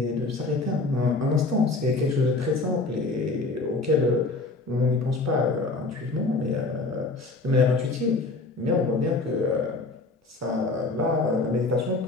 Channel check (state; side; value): quieter; right; 3.4 dB